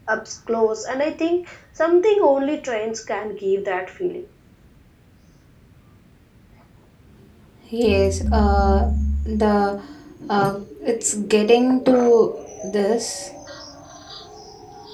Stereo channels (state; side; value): identical; both; correlation 1.00